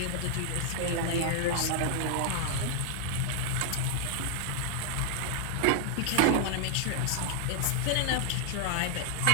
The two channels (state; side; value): different; both; correlation 0.00